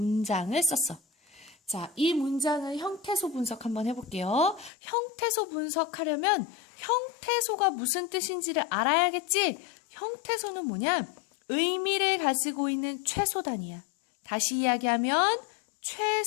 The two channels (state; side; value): drops out; right; at 4.7 s